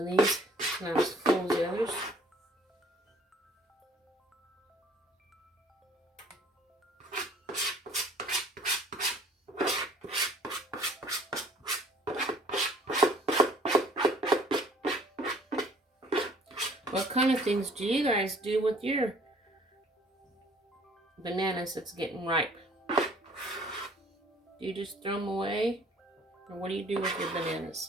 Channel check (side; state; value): both; normal; correlation 0.55